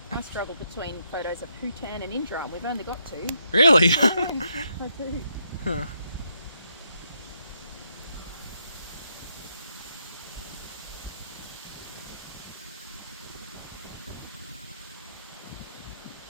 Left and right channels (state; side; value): inverted; both; correlation -0.77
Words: I struggle between photos of Bhutan and Indra, and we've only got two. Really? I do. Huh.